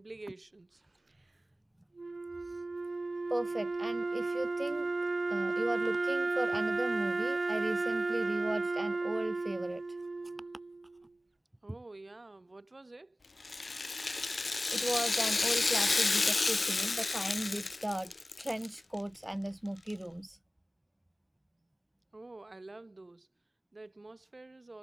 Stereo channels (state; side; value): normal; both; correlation 0.96